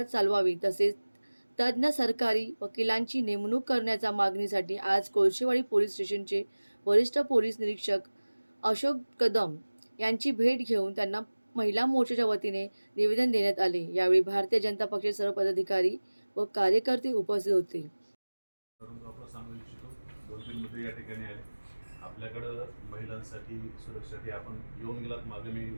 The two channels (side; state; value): both; inverted; correlation -1.00